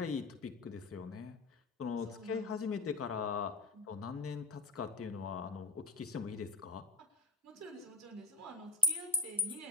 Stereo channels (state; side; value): quieter; right; 3.0 dB